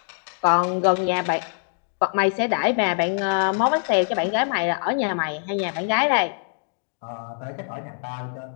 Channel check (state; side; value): silent; right; digital silence